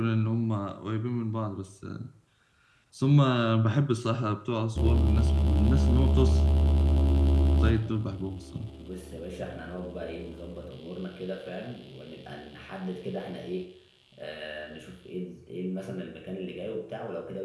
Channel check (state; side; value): identical; both; correlation 1.00